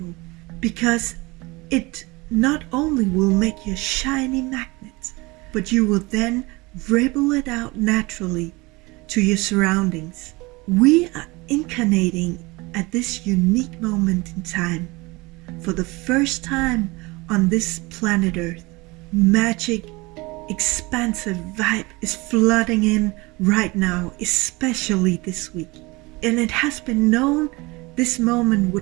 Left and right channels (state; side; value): quieter; left; 23.9 dB